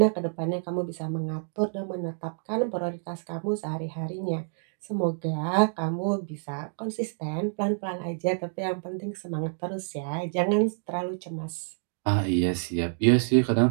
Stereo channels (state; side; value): silent; left; digital silence